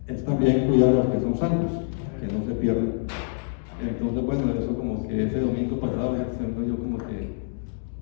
es también cuidar a los que son salvos, que no se pierdan. Entonces, bueno, eso como que ese domingo pasado, yo como que,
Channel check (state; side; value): silent; right; digital silence